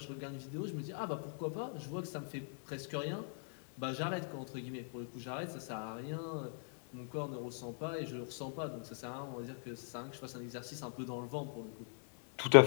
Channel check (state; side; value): silent; right; digital silence